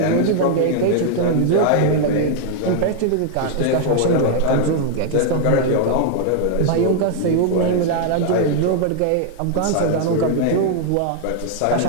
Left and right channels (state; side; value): different; both; correlation -0.01